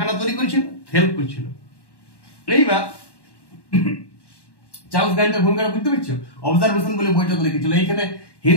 তৈরি করেছিল, হেল্প করছিল। এইবার চার্লস গ্র্যান্টের ভূমিকাটা বুঝতে পারছো? অবজারভেশন বলে বইটা লিখেছিল। এইখানে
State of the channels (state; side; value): late; right; 1.1 ms